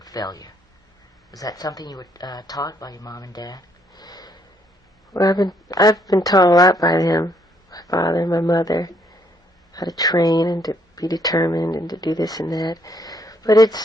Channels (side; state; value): both; normal; correlation 0.69